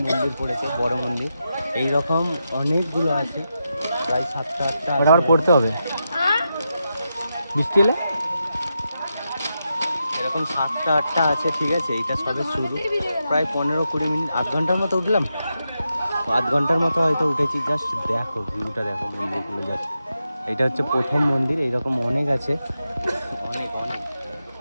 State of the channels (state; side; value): inverted; both; correlation -0.87